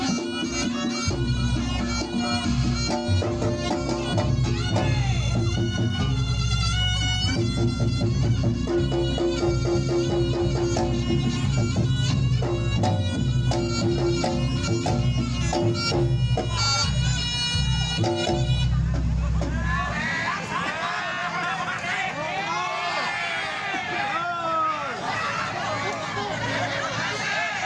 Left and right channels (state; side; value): identical; both; correlation 1.00